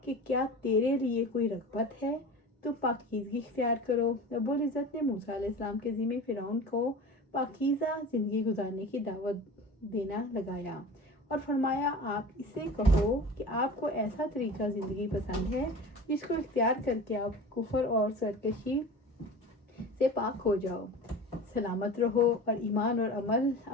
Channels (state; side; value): normal; both; correlation 0.35